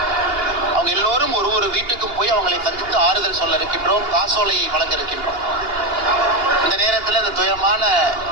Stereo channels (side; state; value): left; late; 2.8 ms